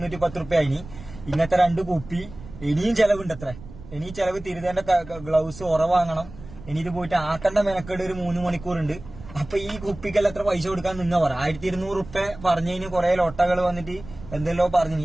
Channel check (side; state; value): right; noise; rumble, 16 dB below the sound